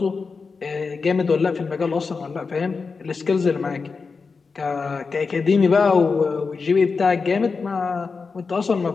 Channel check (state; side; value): quieter; right; 4.7 dB